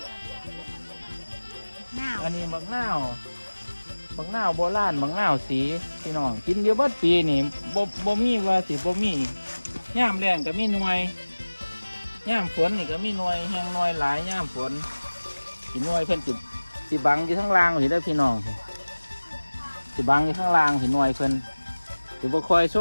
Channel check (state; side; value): inverted; both; correlation -1.00